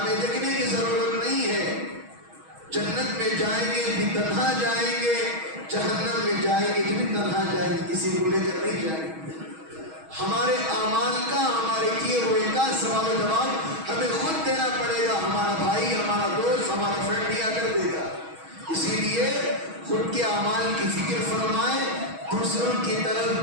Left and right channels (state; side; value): late; left; 6.3 ms